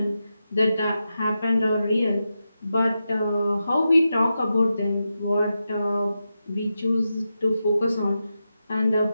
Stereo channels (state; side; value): inverted; both; correlation -0.89